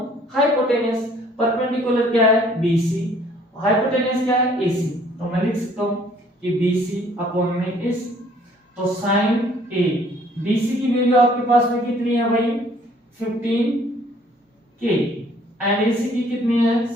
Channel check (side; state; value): both; normal; correlation 0.59